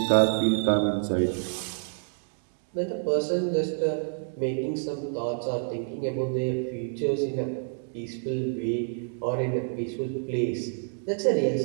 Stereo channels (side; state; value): left; silent; digital silence